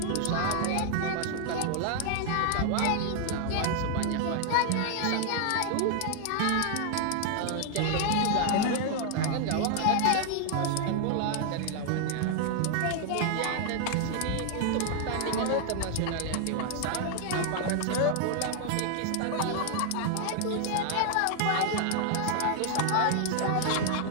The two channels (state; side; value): different; both; correlation 0.00